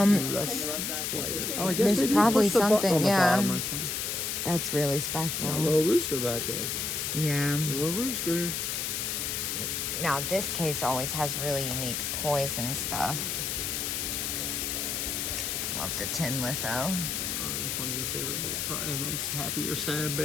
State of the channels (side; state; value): left; noise; hiss, 1 dB below the sound